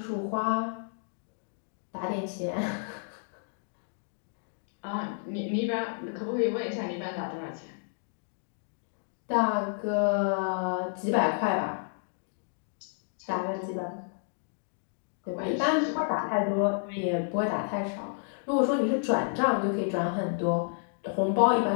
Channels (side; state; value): right; silent; digital silence